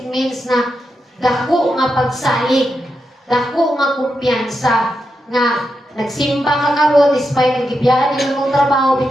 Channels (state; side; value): normal; both; correlation 0.86